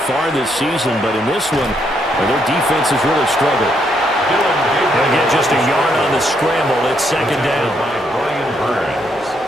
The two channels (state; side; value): normal; both; correlation 0.75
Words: far this season, but in this one, their defense has really struggled. They'll get just a yard on the scramble. It's second down. By Brian Burns.